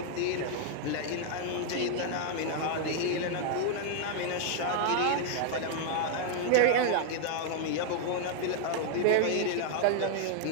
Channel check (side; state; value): both; different; correlation 0.00